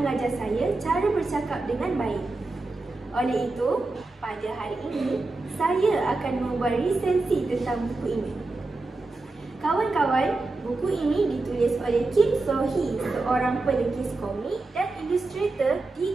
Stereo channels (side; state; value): left; quieter; 3.3 dB